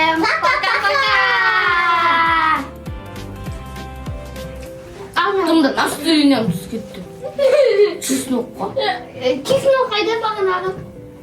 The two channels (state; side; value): identical; both; correlation 1.00